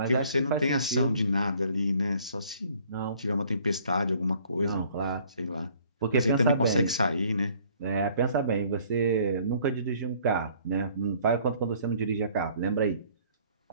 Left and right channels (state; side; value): inverted; both; correlation -0.58